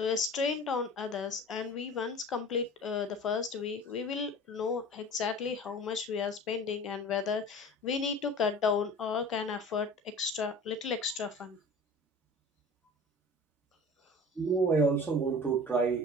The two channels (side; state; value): both; normal; correlation 0.40